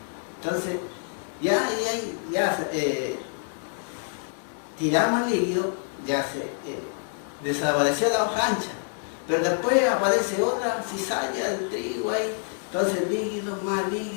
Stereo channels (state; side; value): silent; right; 60 dB below the other